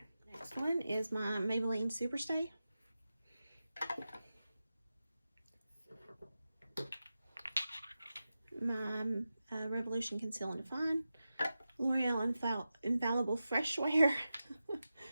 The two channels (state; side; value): inverted; both; correlation -0.92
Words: Next one is my Maybelline Superstay. My Revolution Conceal and Define. L'Oreal Infallible Fresh Wear.